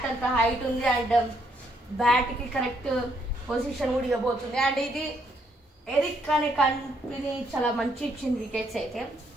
అంత హైట్ ఉంది అండ్ బ్యాట్ కి కరెక్ట్ పొజిషన్ కూడా ఇవ్వబోతుంది. అండ్ ఇది ఎరిక్ అనే కంపెనీ చాలా మంచి ఇచ్చింది వికెట్స్ అయితే.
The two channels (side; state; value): both; normal; correlation 0.72